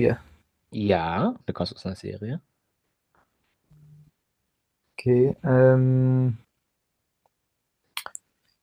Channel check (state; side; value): identical; both; correlation 1.00